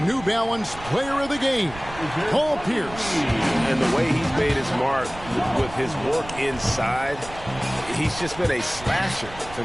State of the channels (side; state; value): right; noise; rumble, 15 dB below the sound